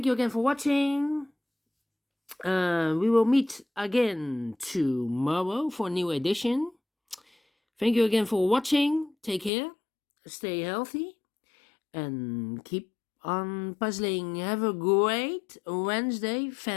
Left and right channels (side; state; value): right; drops out; at 9.5 s